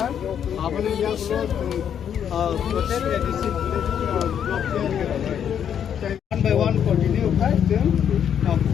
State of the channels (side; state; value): right; quieter; 8.7 dB